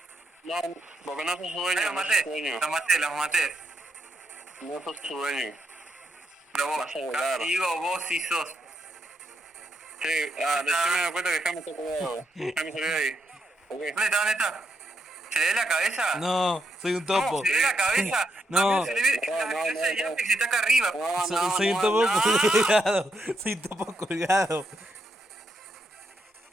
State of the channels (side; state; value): both; normal; correlation 0.79